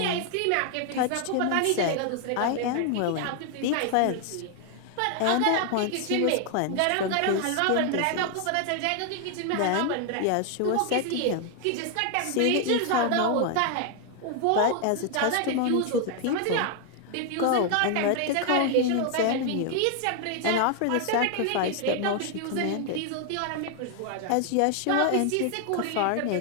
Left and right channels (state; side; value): different; both; correlation 0.00